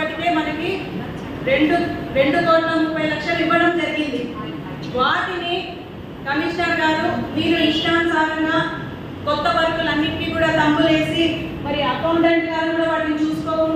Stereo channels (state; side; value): identical; both; correlation 1.00